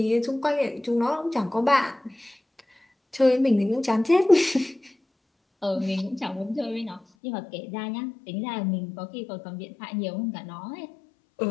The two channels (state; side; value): drops out; right; at 7.0 s